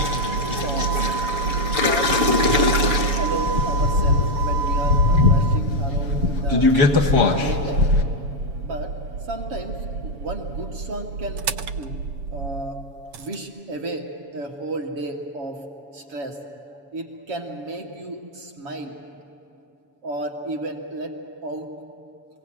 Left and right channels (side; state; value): left; late; 7.1 ms